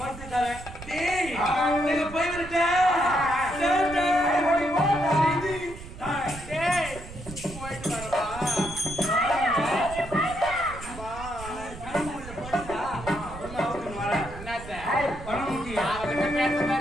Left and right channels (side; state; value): right; noise; rumble, 13 dB below the sound